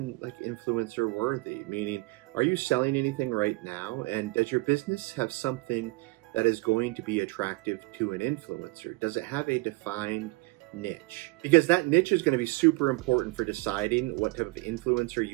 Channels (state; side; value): quieter; left; 22.9 dB